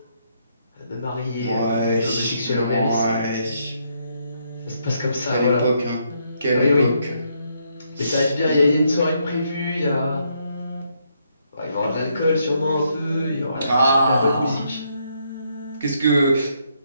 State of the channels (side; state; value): both; inverted; correlation -0.75